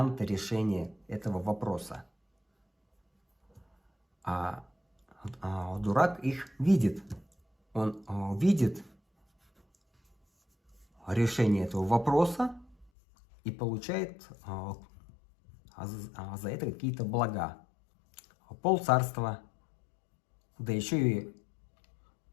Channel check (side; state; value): right; drops out; at 12.9 s